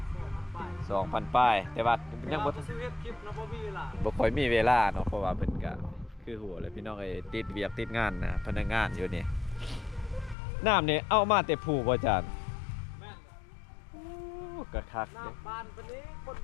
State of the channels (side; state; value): right; drops out; at 10.4 s